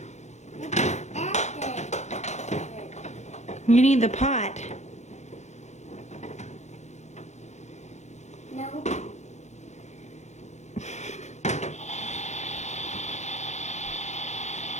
That's it. You need the pot. No.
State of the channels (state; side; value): late; right; 0.33 ms